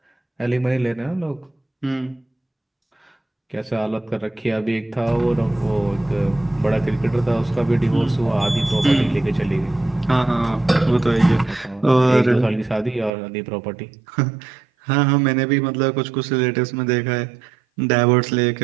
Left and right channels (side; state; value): left; drops out; at 13.1 s